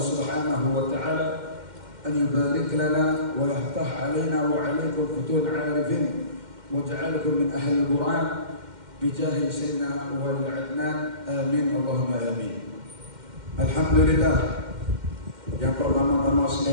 وتعالى أن يبارك لنا ويفتح علينا وعليكم فتوح عارفين واجعلكم من أهل القرآن بجاه سيدنا ولي العدنان. Amin Allahumma amin. Alhamdulillah. Yang pertama-tama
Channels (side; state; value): left; late; 2.1 ms